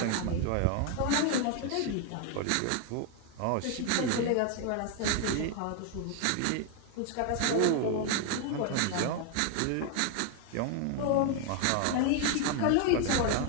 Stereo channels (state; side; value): different; both; correlation 0.01